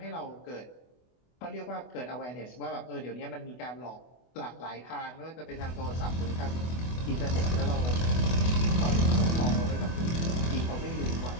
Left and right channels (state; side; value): late; right; 24 ms